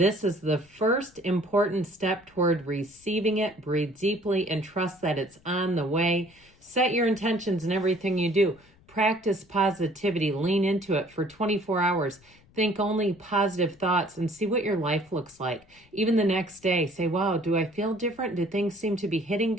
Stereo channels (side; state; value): left; noise; rumble, 29 dB below the sound